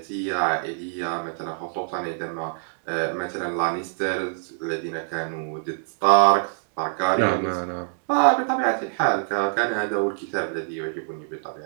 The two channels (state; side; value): silent; left; digital silence